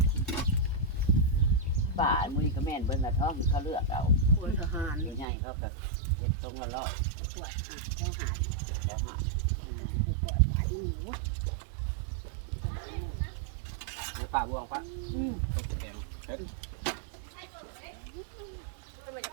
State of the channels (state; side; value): drops out; left; at 5.2 s